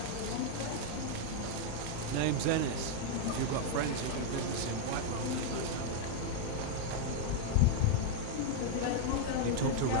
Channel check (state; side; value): different; both; correlation 0.00